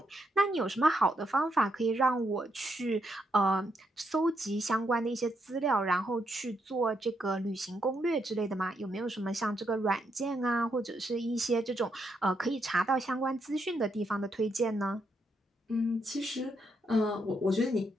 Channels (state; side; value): normal; both; correlation 0.78